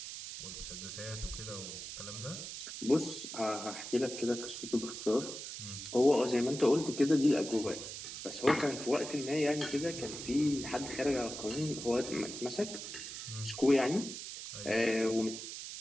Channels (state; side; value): noise; right; hiss, 8 dB below the sound